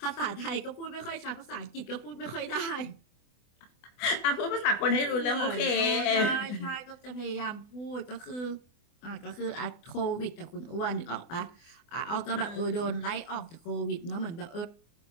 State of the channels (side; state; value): right; late; 24 ms